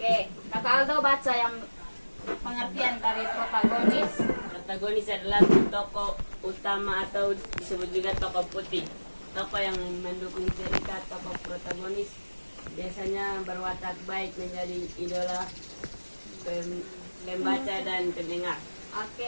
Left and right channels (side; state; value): both; inverted; correlation -1.00